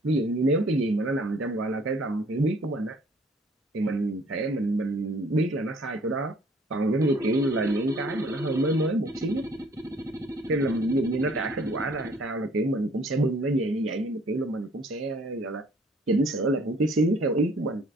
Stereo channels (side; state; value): both; normal; correlation 0.58